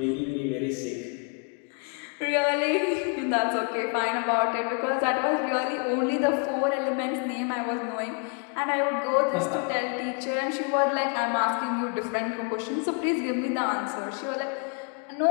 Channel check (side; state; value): right; quieter; 35.5 dB